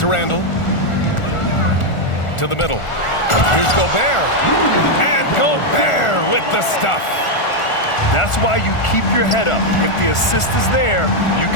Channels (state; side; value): late; right; 1.4 ms